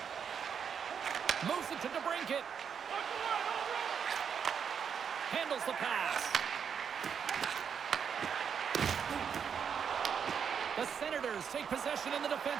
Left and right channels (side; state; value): left; quieter; 7.2 dB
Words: Moves it to DeBrincat. Handles the pass. The Senators take possession in the